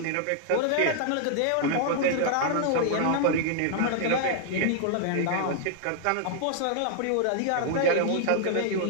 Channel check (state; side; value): different; both; correlation 0.00